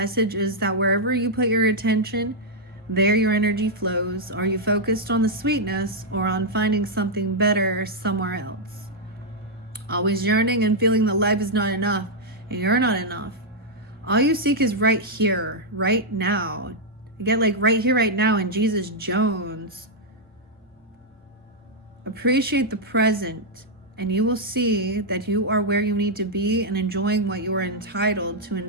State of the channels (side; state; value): both; normal; correlation -0.05